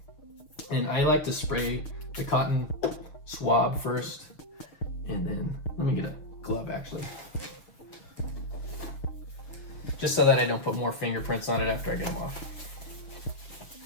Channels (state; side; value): late; right; 6.6 ms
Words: And I like to spray the cotton swab first, and then let me get a glove actually, just so that I don't put more fingerprints on it after I get them off.